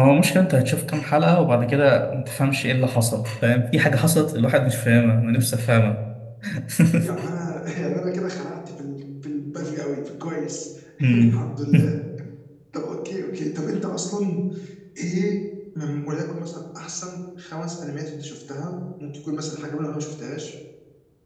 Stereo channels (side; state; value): both; identical; correlation 1.00